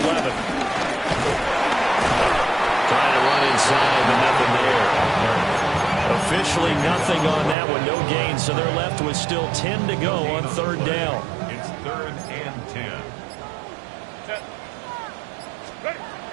11. Trying to run inside, but nothing there. Officially nothing on that one, no gain, so they're left with still 10 to go on 3rd down. It's 3rd and 10.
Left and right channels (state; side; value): drops out; left; at 7.6 s